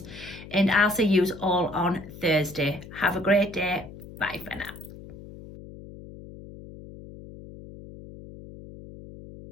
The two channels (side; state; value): left; noise; hum, 16 dB below the sound